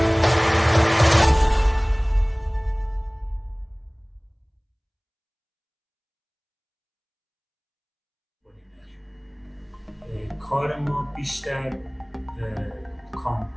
کار ما بیشتر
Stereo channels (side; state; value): both; identical; correlation 1.00